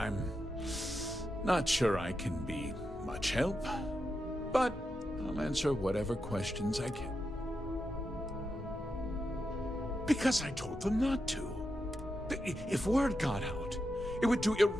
not sure I can be much help, but I'll answer whatever questions I can. Because I told them not to. If word got out, it would do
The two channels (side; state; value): both; normal; correlation 0.87